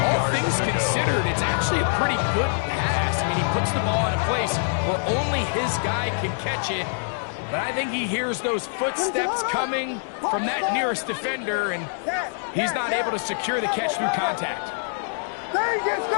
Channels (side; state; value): right; silent; digital silence